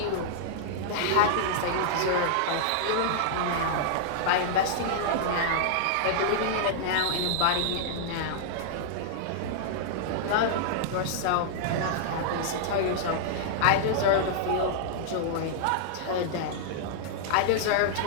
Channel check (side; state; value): both; different; correlation -0.01